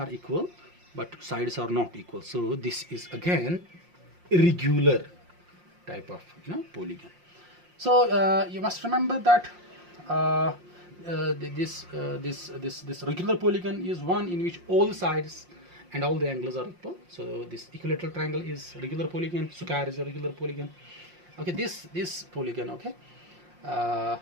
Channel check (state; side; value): late; left; 5.6 ms